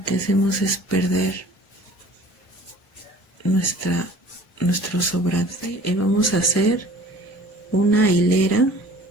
que hacemos es perder nuestro sobrante. Y vamos a hacer una hilera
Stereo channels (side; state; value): both; normal; correlation 0.48